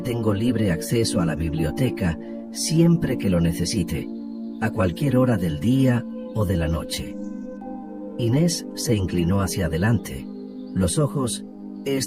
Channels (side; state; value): both; identical; correlation 1.00